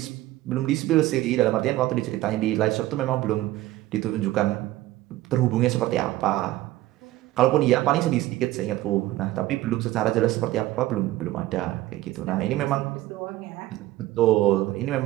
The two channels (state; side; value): quieter; left; 16.4 dB